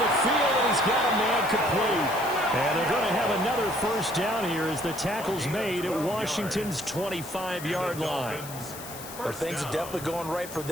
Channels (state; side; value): noise; left; hiss, 13 dB below the sound